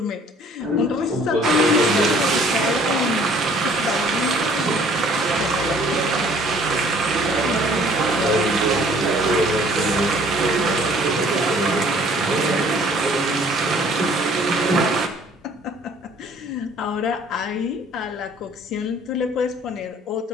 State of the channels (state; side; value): normal; both; correlation 0.56